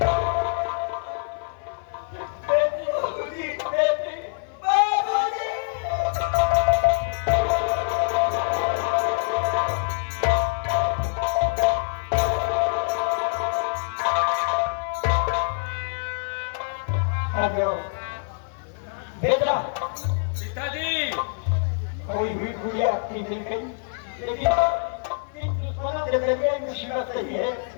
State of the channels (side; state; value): right; silent; 57 dB below the other